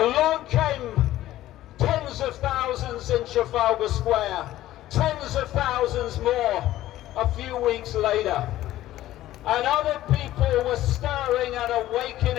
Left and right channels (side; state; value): right; quieter; 14.5 dB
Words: came tens of thousands in Trafalgar Square, tens of thousands more a few weeks later. And other people were stirring and